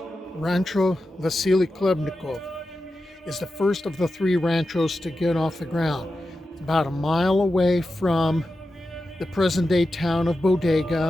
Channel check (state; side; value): normal; both; correlation 0.91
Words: Rancho Vasily Klebnikov is the first of the 3 ranchos to get off the ground. About a mile away from the present-day town of